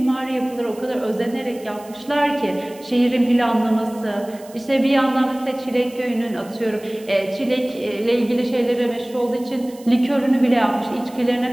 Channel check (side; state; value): right; noise; hiss, 23 dB below the sound